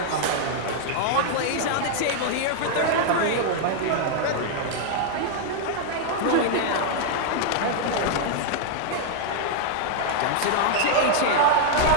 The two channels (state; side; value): different; both; correlation 0.00